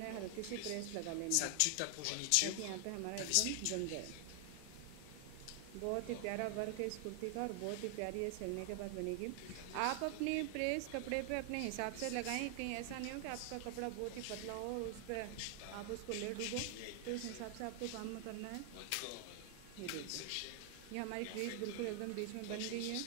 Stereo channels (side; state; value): both; different; correlation 0.00